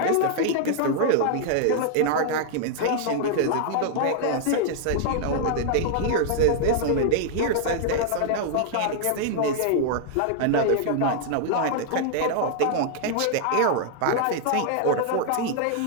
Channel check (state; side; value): different; both; correlation 0.00